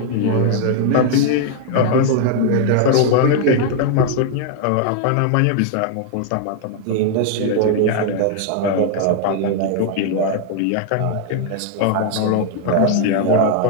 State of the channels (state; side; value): different; both; correlation 0.00